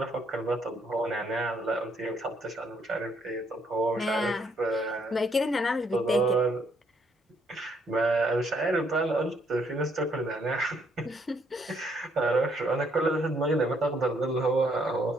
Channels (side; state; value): both; normal; correlation 0.70